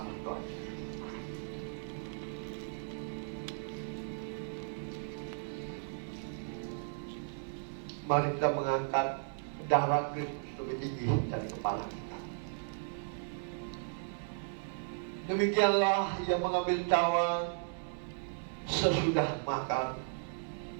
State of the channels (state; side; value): silent; left; digital silence